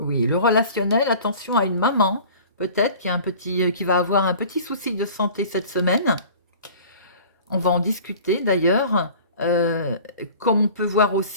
le relationnel, attention à une maman, peut-être, qui va avoir un petit souci de santé cette semaine. On va en discuter d'ailleurs. Comme on peut voir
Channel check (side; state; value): both; inverted; correlation -0.44